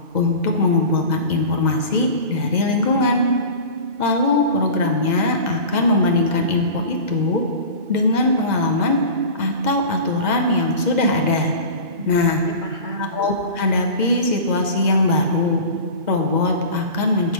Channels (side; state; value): left; late; 2.0 ms